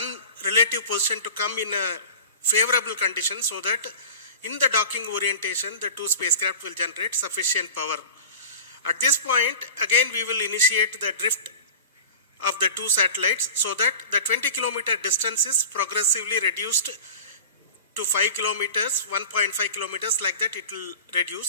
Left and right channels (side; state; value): both; inverted; correlation -0.36